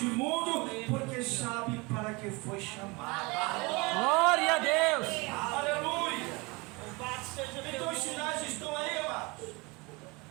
mundo, porque sabe para que foi chamada. Glória a Deus. Aleluia! Então os sinais estão aí, amados,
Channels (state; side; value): quieter; left; 26.3 dB